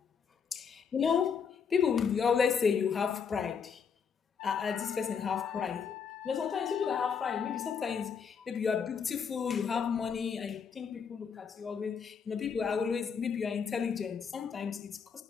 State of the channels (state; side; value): quieter; right; 6.5 dB